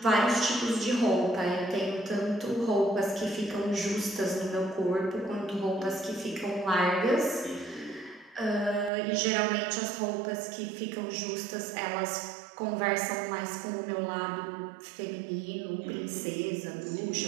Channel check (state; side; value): drops out; left; at 8.9 s